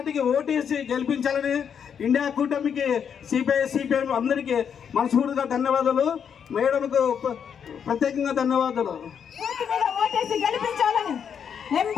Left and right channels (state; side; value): quieter; right; 7.6 dB